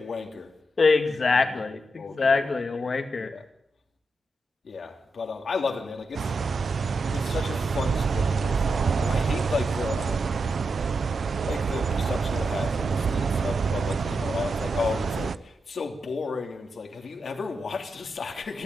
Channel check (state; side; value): normal; both; correlation 0.85